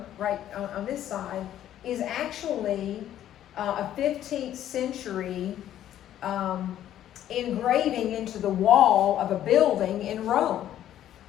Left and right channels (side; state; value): right; quieter; 11.7 dB